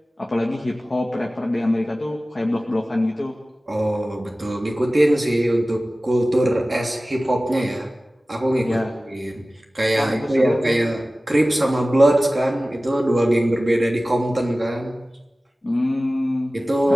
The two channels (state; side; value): normal; both; correlation 0.97